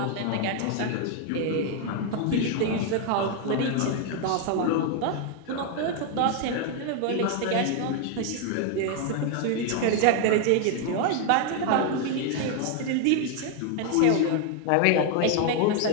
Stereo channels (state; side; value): different; both; correlation 0.00